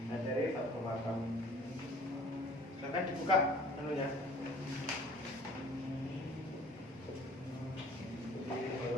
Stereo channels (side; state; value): both; normal; correlation 0.50